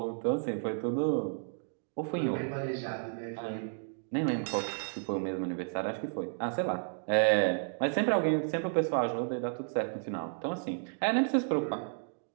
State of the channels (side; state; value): left; silent; digital silence